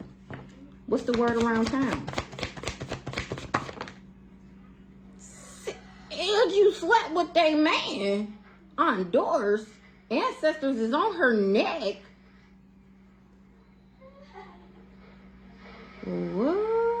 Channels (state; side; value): identical; both; correlation 1.00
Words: What's the word around town? And you slept with they man on doors. Ancestors is on her neck. What?